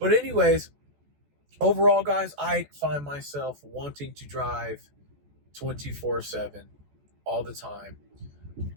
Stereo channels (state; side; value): late; left; 14 ms